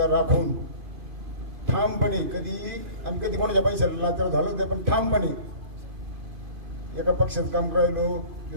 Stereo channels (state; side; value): late; left; 2.5 ms